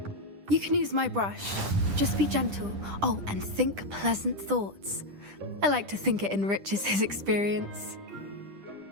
You can use my brush. Just be gentle. Oh, and think pleasant thoughts. I like to think it enriches his experience.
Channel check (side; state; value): left; late; 10 ms